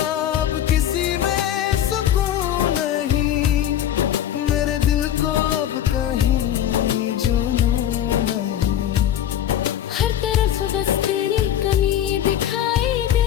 अब किसी में सुकून नहीं, मेरे दिल को अब कहीं जुनून नहीं। हर तरफ बस तेरी कमी दिखाई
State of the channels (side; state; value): right; quieter; 10.8 dB